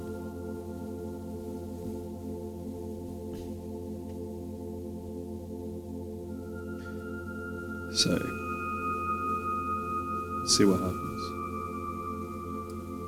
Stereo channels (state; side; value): noise; left; hum, 30 dB below the sound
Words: So, let's see what happens.